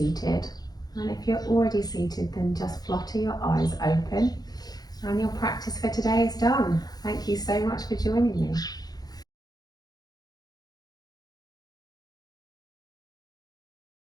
And if you're already seated, then just flutter your eyes open. And your practice for today is done. Thank you so much for joining me.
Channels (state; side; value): late; right; 0.19 ms